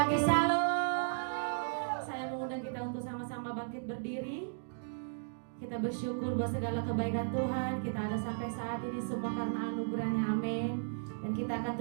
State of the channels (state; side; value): silent; left; digital silence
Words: shalom. Saya mengundang kita untuk sama-sama bangkit berdiri. Kita bersyukur buat segala kebaikan Tuhan. Kita ada sampai saat ini semua karena anugerahnya, amin. Dan kita akan